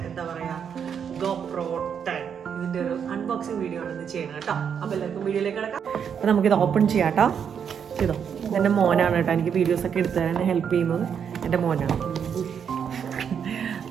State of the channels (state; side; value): quieter; left; 7.6 dB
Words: എന്താ പറയുക GoPro 10. ഇതിൻ്റെ ഒരു അൺബോക്സിങ് വീഡിയോ ആണ് ഇന്ന് ചെയ്യണം കേട്ടോ. അപ്പോൾ എല്ലാവർക്കും വീഡിയോയിലേക്ക് കിടക്കാം. അപ്പോൾ നമുക്കിത് ഓപ്പൺ ചെയ്യാം കേട്ടോ. ചെയ്തോ. എൻ്റെ മോനാണ് കേട്ടോ എനിക്ക് വീഡിയോസൊക്കെ എടുത്തു തരാൻ ഹെൽപ്പ് ചെയ്യുന്നത്. എൻ്റെ മോനാണ്.